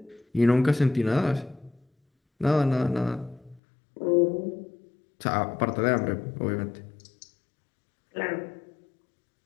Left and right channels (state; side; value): drops out; right; at 3.6 s